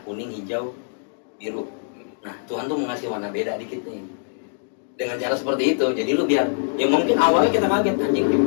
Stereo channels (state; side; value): silent; right; digital silence